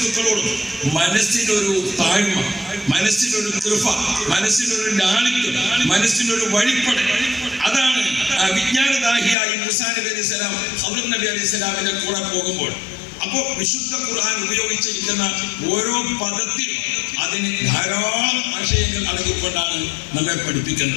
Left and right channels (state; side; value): drops out; right; at 9.3 s